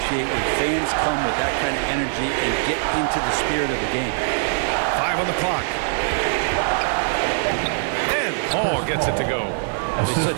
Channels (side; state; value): left; silent; digital silence